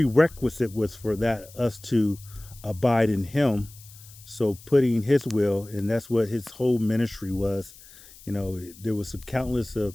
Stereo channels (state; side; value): noise; left; hiss, 21 dB below the sound